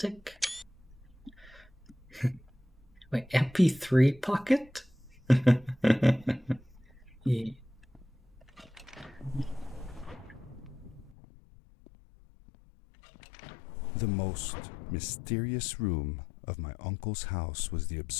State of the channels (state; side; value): drops out; right; at 11.2 s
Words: Wait, MP3 pocket? Yeah. The most mysterious room of my uncle's house was the